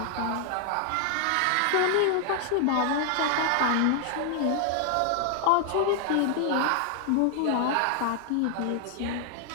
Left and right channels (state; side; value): different; both; correlation 0.00